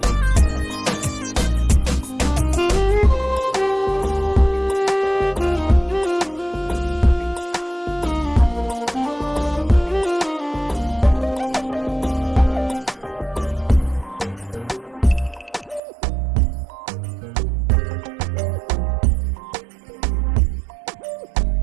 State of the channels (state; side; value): drops out; left; at 15.8 s